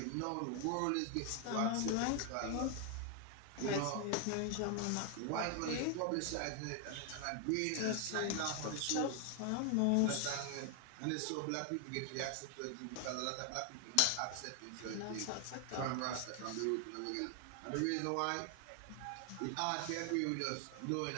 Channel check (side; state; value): both; different; correlation 0.00